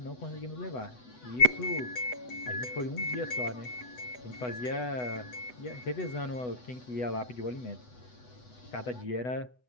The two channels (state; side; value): late; right; 8.1 ms